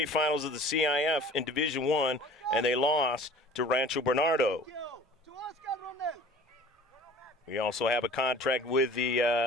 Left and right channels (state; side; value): normal; both; correlation 0.45